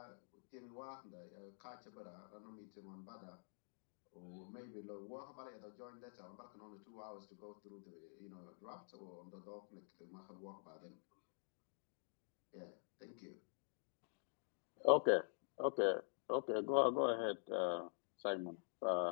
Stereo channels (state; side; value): silent; right; digital silence